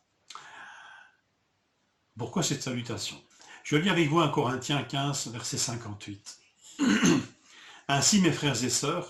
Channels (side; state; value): both; identical; correlation 1.00